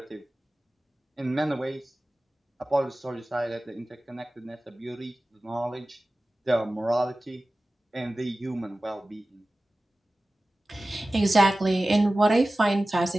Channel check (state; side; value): normal; both; correlation 0.96